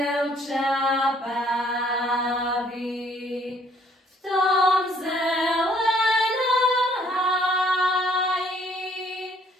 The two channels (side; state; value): both; normal; correlation 0.62